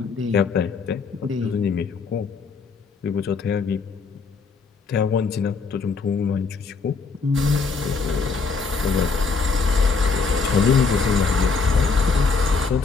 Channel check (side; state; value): right; quieter; 4.7 dB